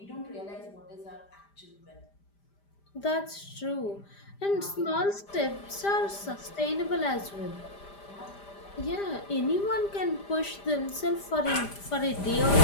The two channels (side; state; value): right; late; 5.0 ms